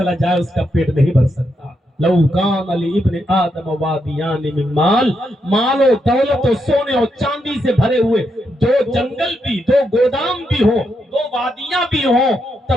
جائے اس کا پیٹ نہیں بھر سکتا۔ لو کان لابن آدم وادیان من مال، مال و دولت و سونے اور چاندی سے بھرے ہوئے دو جنگل بھی، دو گودام بھی ہو، دو وادیاں بھی ہوں،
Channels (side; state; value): both; normal; correlation 0.81